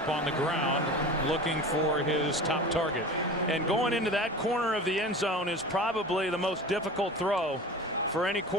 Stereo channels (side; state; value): both; normal; correlation 0.35